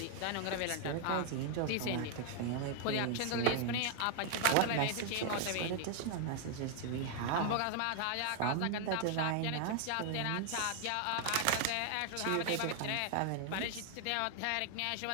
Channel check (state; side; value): different; both; correlation 0.00